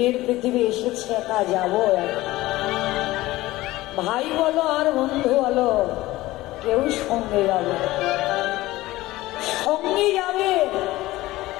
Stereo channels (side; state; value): right; quieter; 17.8 dB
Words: পৃথিবী এসেছে, একা যাবো। ভাই বলো আর বন্ধু বলো, কেউ সঙ্গে যাবে, সঙ্গে যাবে।